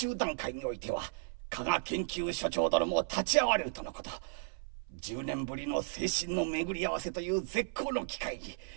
段階においては加賀研究所長殿も立ち会われるとのこと。10年ぶりの精神の巡り合わせという絶好の機会に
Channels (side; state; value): left; silent; 55 dB below the other